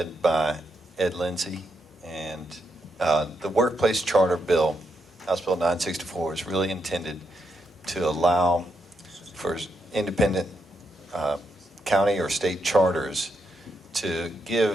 by Ed Lindsay, and the Workplace Charter Bill, House Bill 964, is really intended to allow for independent county or state charters to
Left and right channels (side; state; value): both; normal; correlation 0.81